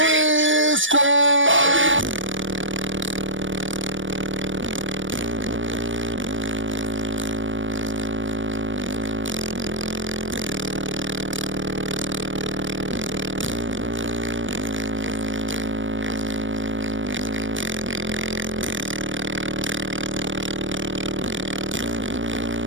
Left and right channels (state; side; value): late; left; 0.56 ms